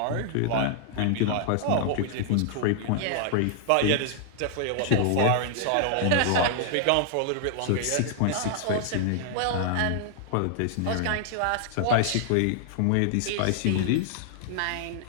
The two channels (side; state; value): both; different; correlation -0.01